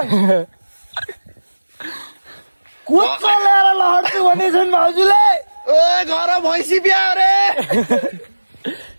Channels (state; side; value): inverted; both; correlation -1.00